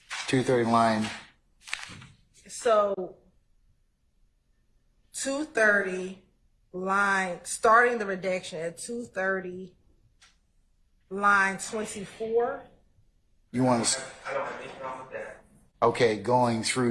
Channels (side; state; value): both; identical; correlation 1.00